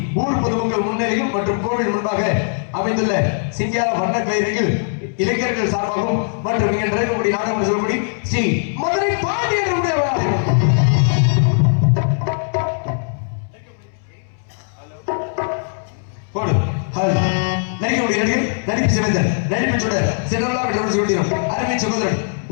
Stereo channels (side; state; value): right; silent; 66 dB below the other